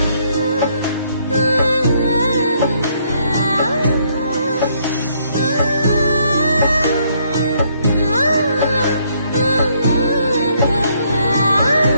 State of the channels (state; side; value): inverted; both; correlation -0.69